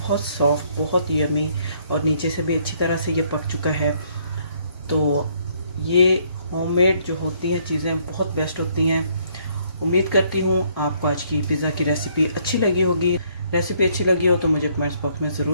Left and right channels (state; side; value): inverted; both; correlation -0.67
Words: सॉफ्ट, बहुत यमी, और नीचे से भी अच्छी तरह से ये पक चुका है। तो ये होममेड जो होती हैं चीज़ें बहुत बेस्ट होती हैं। उम्मीद करती हूँ आपको आज की पिज़्ज़ा की रेसिपी अच्छी लगी होगी। रेसिपी अच्छी लगी हो तो मुझे कमेंट्स बॉक्स में